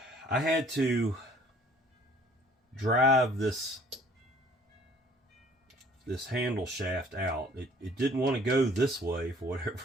I had to drive this handle shaft out. It didn't want to go this way for whatever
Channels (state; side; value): normal; both; correlation 0.56